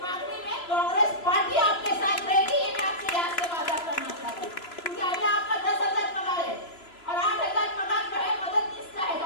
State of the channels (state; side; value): late; right; 3.0 ms